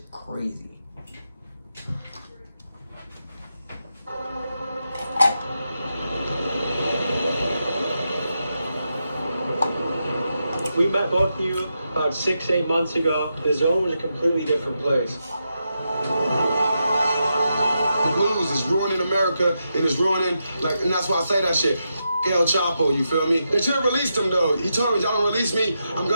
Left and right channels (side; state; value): both; inverted; correlation -0.85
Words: crazy. We met both of you about 6-8 months ago. The Zone was a completely different place. The blues is ruining America and it's ruining, and that's why I say that shit. El Chapo, you feel me? They should have released him though. He told me, y'all don't release me, I'm